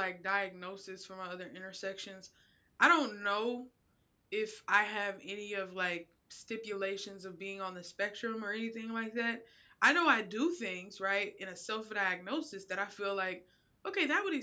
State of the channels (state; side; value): identical; both; correlation 1.00